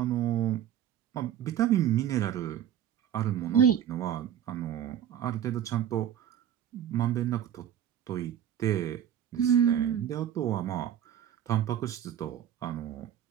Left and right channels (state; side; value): quieter; left; 10.1 dB